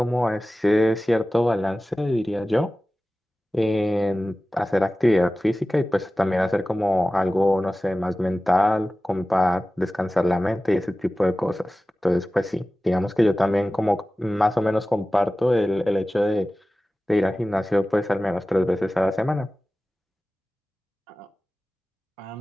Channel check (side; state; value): both; normal; correlation 0.96